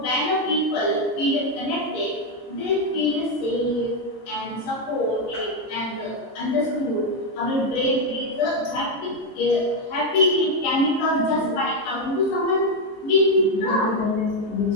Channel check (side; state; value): right; late; 15 ms